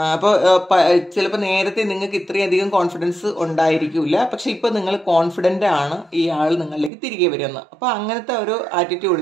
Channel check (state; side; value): drops out; left; at 6.9 s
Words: അപ്പോൾ ചിലപ്പോൾ നേരത്തെ നിങ്ങൾക്ക് ഇത്രയധികം കോൺഫിഡൻസ് ഉണ്ടായിരിക്കില്ല, പക്ഷെ ഇപ്പോൾ നിങ്ങൾ കോൺഫിഡൻ്റ് ആണ് ഈ ആൾ നിങ്ങളിലേക്ക് തിരികെ വരുമെന്ന്. അപ്പോൾ അങ്ങനത്തെ ഒരു